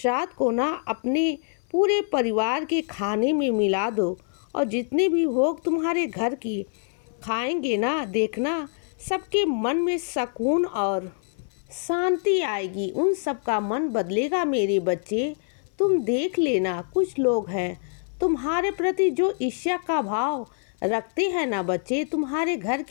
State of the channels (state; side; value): silent; right; 61 dB below the other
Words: को ना अपने पूरे परिवार के खाने में मिला दो। और जितने भी भोग तुम्हारे घर की खाएंगे ना, देखना सबके मन में सुकून और शांति आएगी। उन सब का मन बदलेगा मेरे बच्चे। तुम देख लेना, कुछ लोग हैं तुम्हारे प्रति जो ईर्ष्या का भाव रखते हैं ना बच्चे, तुम्हारे घर